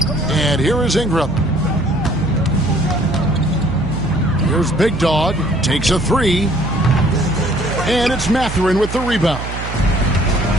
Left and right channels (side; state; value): right; noise; hum, 7 dB below the sound